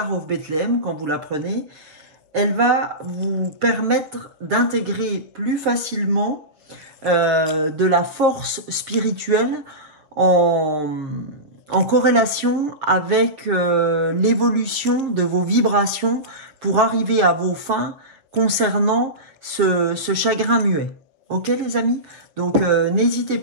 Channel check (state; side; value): late; left; 6.9 ms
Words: of Bethlehem, quand vous la prenez, elle va vous permettre d'intégrer plus facilement de la force spirituelle en corrélation avec l'évolution de vos vibrations pour arriver à vos fins concernant ce chagrin muet. Ok les amis? Donc n'hésitez